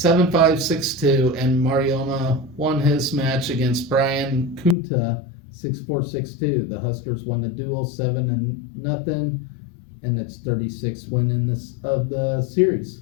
6-2, and Marioma won his match against Brian Kunta 6-4, 6-2. The Huskers won the duel 7-0, and its 36th win in of the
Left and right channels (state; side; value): drops out; right; at 4.8 s